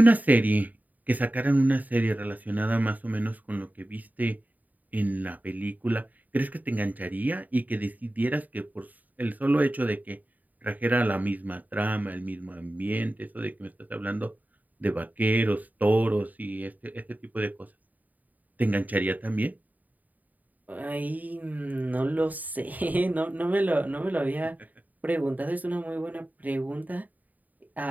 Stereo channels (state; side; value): late; left; 0.079 ms